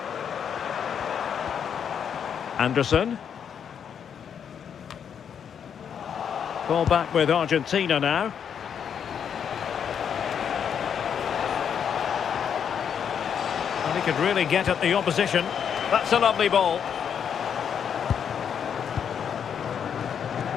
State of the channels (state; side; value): quieter; right; 7.9 dB